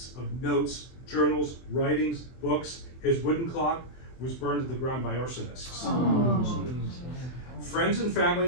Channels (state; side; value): late; right; 24 ms